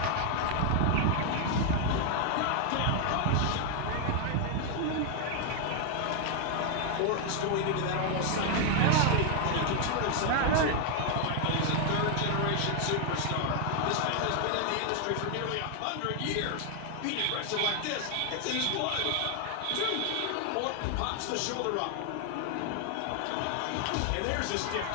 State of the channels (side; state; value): both; different; correlation 0.00